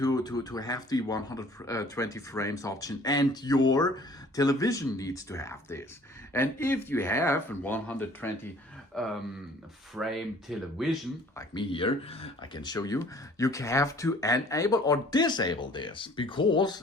the 120 frames option, and your television needs to have this. And if you have a 120 frame television, like me here, I can show you, you have to enable or disable this,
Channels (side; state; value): both; normal; correlation 0.53